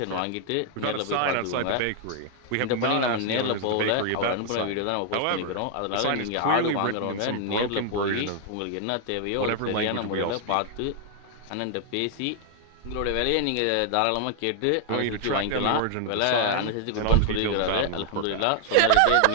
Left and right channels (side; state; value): both; different; correlation 0.00